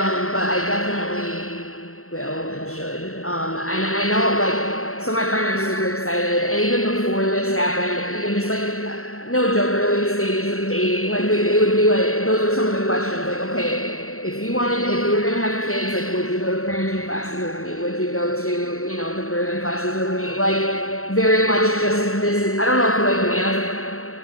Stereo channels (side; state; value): right; late; 0.63 ms